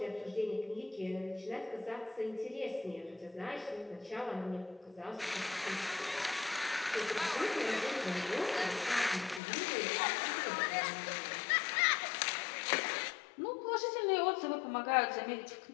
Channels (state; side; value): drops out; right; at 9.4 s